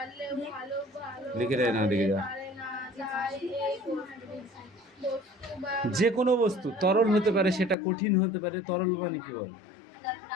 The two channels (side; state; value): right; drops out; at 7.8 s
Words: লিখে দেয় না, দেখে যা। যে কোনো বস্তু তরল হতে পারে, সেটা কঠিন হতে পারে। তরল মানে কি বল?